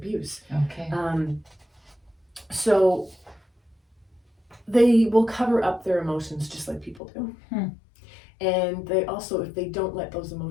Okay. So they will cover up their emotions just like people do. And they also, if they don't let those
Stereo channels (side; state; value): right; drops out; at 7.0 s